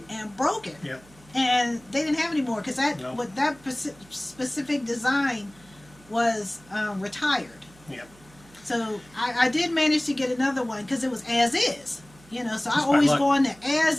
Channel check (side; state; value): right; noise; hum, 26 dB below the sound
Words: and broke it. Yeah. And they didn't have any more because that specific design was retired. Yeah. So I did manage to get another one because it was as is. So Just I by always luck. go on the as